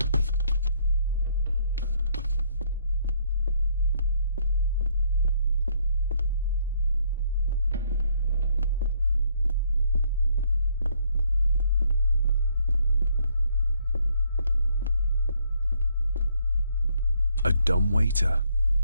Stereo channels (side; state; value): both; inverted; correlation -0.68